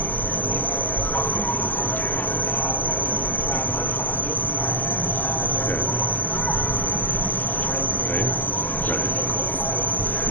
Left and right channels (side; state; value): right; late; 0.085 ms